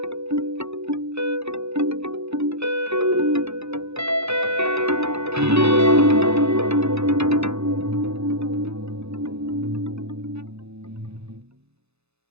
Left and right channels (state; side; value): late; left; 0.80 ms